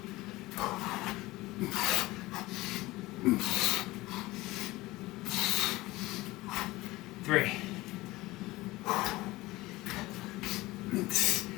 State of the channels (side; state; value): right; quieter; 19.6 dB